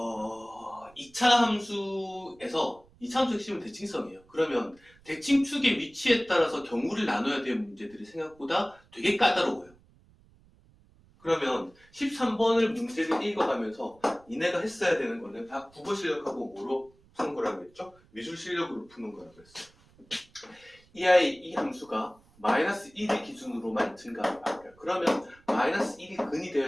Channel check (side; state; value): right; noise; rumble, 29 dB below the sound